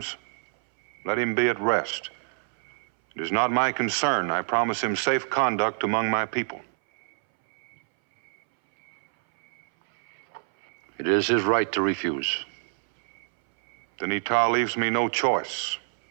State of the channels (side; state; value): left; silent; 61 dB below the other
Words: let him be at rest. It is not my concern. I promise him safe conduct among my people. It is his right to refuse. Then Ita leaves me no choice.